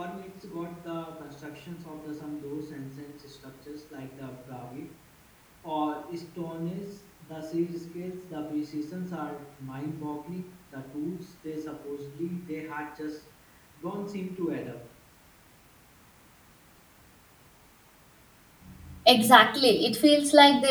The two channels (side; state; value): both; identical; correlation 1.00